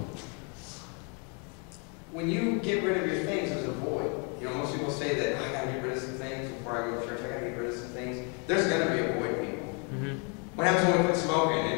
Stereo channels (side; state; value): right; quieter; 36.2 dB